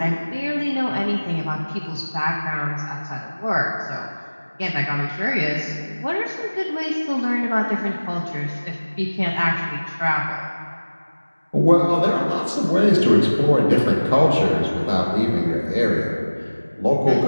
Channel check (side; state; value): both; inverted; correlation -1.00